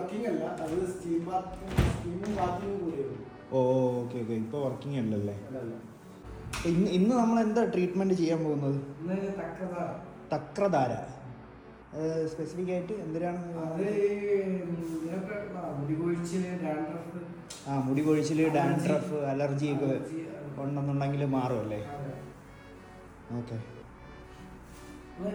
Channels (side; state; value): both; identical; correlation 1.00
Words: അല്ല, അത് സ്റ്റീമും ബാത്തിങ്ങും കൂടിയാണ്. ഓ, ഓക്കെ ഓക്കെ, ഇപ്പോൾ വർക്കിംഗ് അല്ലല്ലേ? ഇന്ന് നമ്മൾ എന്താ ട്രീറ്റ്മെന്റ് ചെയ്യാൻ പോകുന്നത്? തക്രധാര സ്പെസിഫിക് ആയിട്ട് എന്തിനാണ്? മുടി കൊഴിച്ചില്, ഡാൻഡ്രഫ്, അലർജി ഒക്കെ ഉണ്ടെന്നുണ്ടെങ്കിൽ മാറുമല്ലേ? Okay